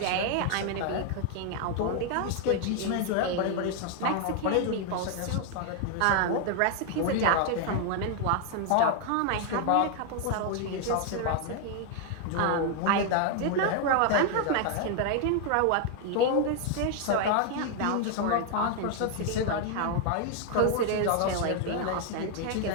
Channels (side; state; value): both; different; correlation 0.00